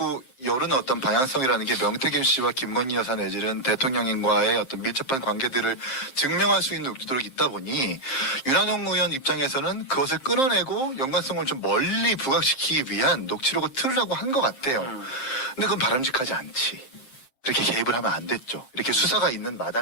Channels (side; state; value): right; late; 7.5 ms